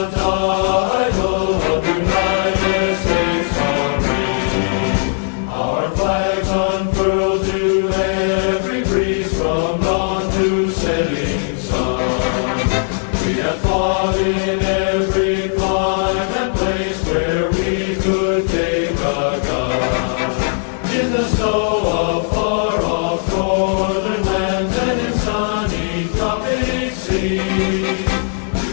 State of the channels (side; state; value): right; silent; digital silence